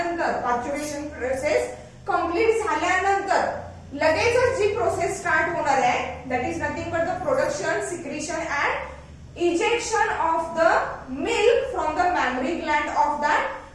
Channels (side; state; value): both; identical; correlation 1.00